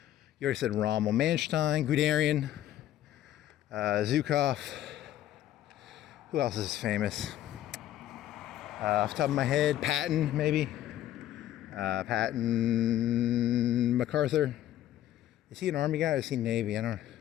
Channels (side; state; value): right; quieter; 12.6 dB